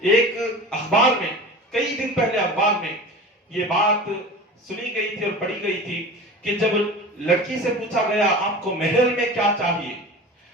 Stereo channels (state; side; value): normal; both; correlation 0.35